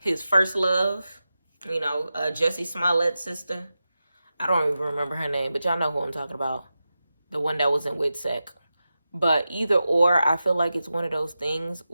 first love, you know, Jussie Smollett's sister. I don't even remember her name, but y'all know who I'm talking about. The one that was in WITSEC. But either or, I feel like it's one of those things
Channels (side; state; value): both; inverted; correlation -0.92